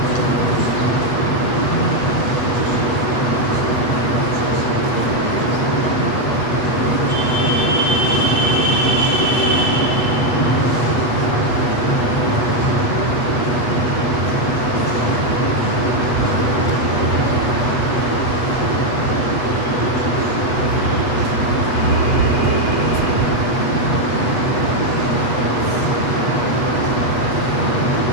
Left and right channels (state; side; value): late; right; 8.2 ms